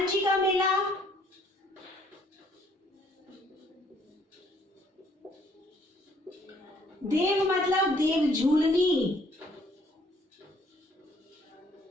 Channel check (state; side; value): normal; both; correlation 0.64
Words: जी का मेला, देव मतलब देव झूलनी,